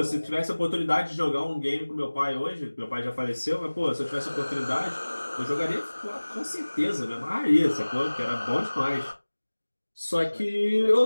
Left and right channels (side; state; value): both; inverted; correlation -1.00